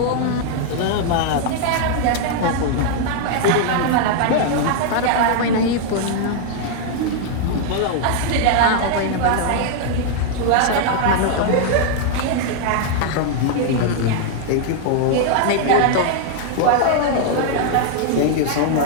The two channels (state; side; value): different; both; correlation 0.00